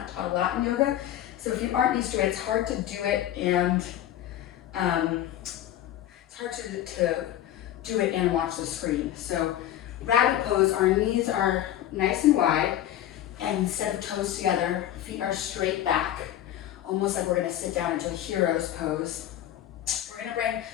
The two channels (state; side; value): quieter; right; 12.2 dB